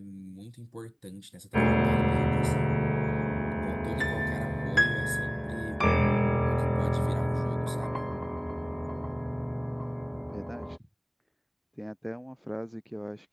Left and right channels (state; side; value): identical; both; correlation 1.00